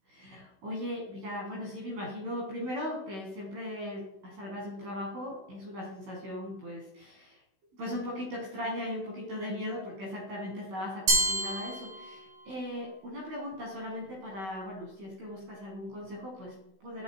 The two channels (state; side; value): late; left; 16 ms